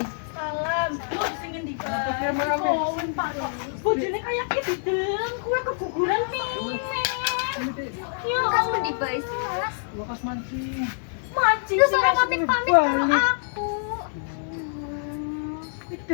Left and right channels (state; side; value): silent; right; digital silence